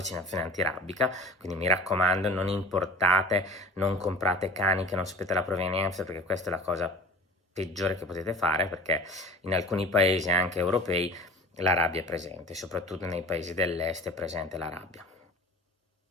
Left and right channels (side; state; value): both; normal; correlation 0.40